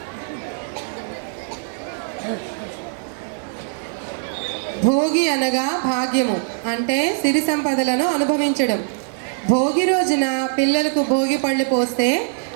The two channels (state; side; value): silent; left; 58 dB below the other